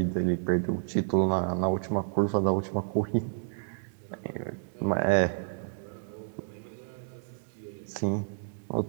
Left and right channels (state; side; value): silent; left; digital silence